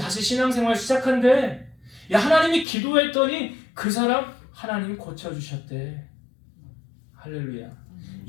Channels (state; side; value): drops out; right; at 2.7 s